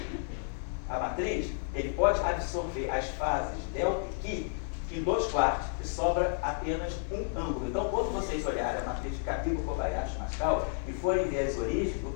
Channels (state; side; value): silent; right; 57 dB below the other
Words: a matriz, ele pode absorver as fases delta e qui em 2 quartos, e sobra apenas um ângulo. Então, quando vocês olharem a matriz de Cabibbo-Kobayashi-Maskawa e forem ver as origens do